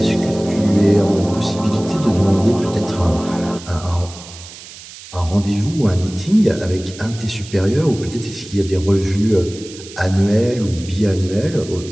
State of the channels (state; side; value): noise; right; hiss, 16 dB below the sound